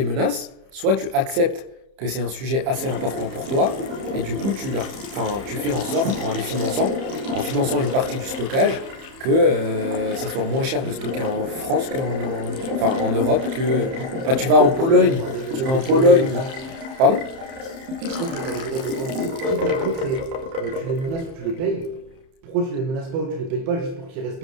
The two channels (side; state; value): left; late; 30 ms